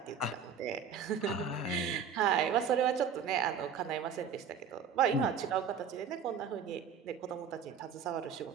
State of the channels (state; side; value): quieter; left; 7.0 dB